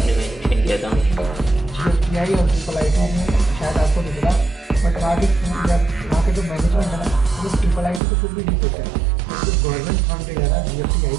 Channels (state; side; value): drops out; left; at 8.0 s